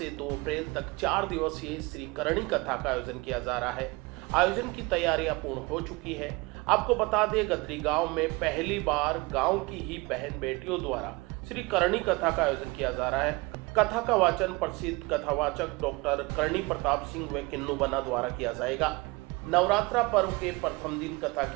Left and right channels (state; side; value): quieter; left; 25.0 dB